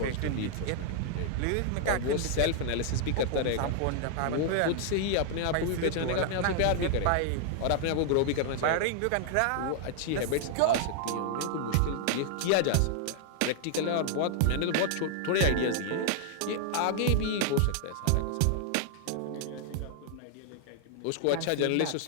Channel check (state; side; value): different; both; correlation 0.00